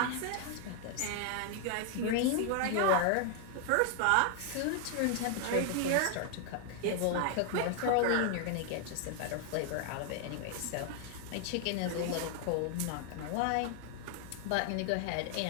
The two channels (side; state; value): both; different; correlation 0.00